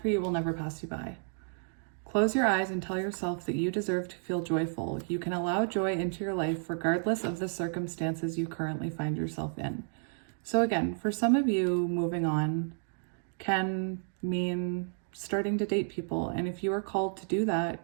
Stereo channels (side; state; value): left; silent; 56 dB below the other